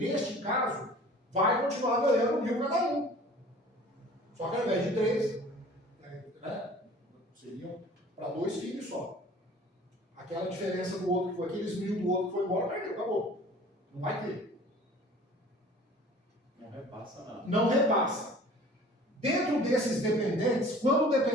caso, vai continuar ganhando 1.000 cada um. Só que ao invés de 3, né? Seriam para 2 filhos só. Aquela diferença do outro que foi, aqueles 1.000 do outro que foi embora, perdeu, acabou. Não vai ter. Não repassa nada. Não repassa. Dentro desses dependentes, quando o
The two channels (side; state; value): both; normal; correlation 0.47